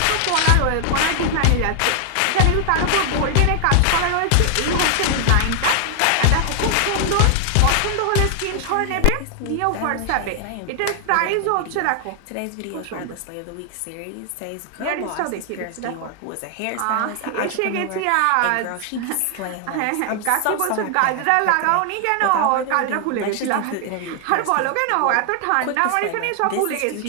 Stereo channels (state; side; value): different; both; correlation 0.00